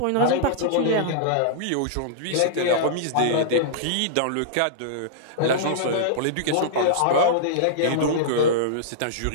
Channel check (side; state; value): both; different; correlation -0.02